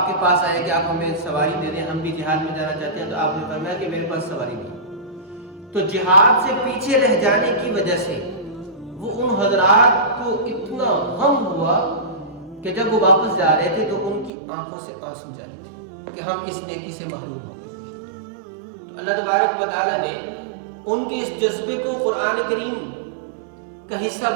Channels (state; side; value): drops out; left; at 14.3 s